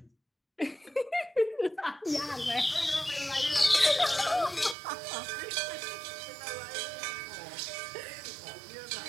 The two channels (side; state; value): left; drops out; at 4.8 s